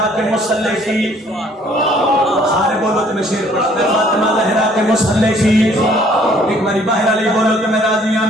के मुसल्ले की सारे बोलो तो मैं शेर पढ़ता मैं फातिमा ज़हरा के मुसल्ले की एक बारी बाहर अली बोलो तो मैं राजी हूं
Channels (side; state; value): both; normal; correlation 0.60